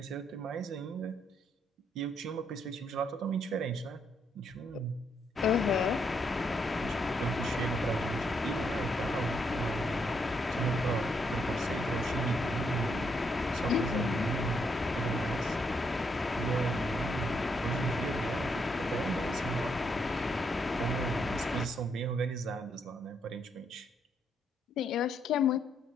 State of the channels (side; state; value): both; normal; correlation 0.76